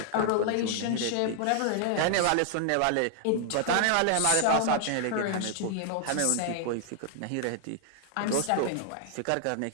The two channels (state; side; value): different; both; correlation 0.00